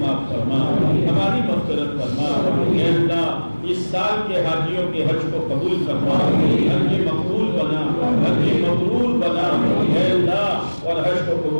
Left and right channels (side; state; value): both; inverted; correlation -1.00